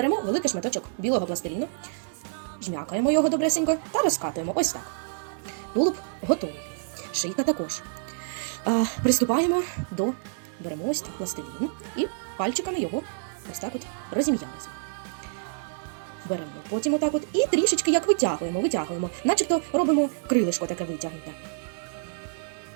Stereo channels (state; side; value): silent; left; digital silence